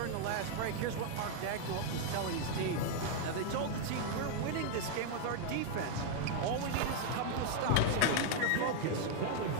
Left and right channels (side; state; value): both; different; correlation 0.00